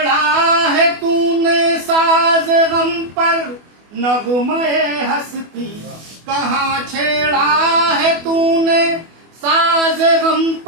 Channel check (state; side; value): late; left; 24 ms